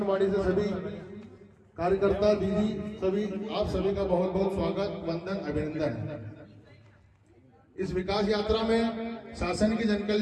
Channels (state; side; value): identical; both; correlation 1.00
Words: से सभी कार्यकर्ता दीदी सभी, आप सभी का बहुत बहुत स्वागत, वंदन, अभिनंदन। इस विकास यात्रा में शासन की जन